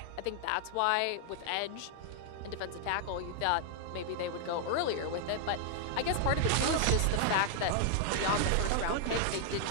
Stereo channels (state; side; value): different; both; correlation 0.00